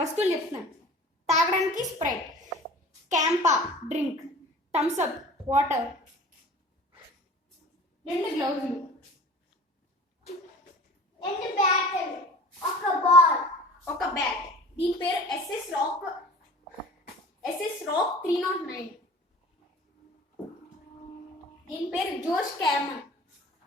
చెప్తున్నాను. తాగడానికి Sprite, CAMPA drink, Thums Up water, 2 గ్లౌజులు, 2 battle, ఒక బాల్, ఒక బ్యాట్. దీని పేరు ఎస్ఎస్ రాక్ 309. దీని పేరు జోష్ క్యామన్.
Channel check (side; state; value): both; normal; correlation 0.43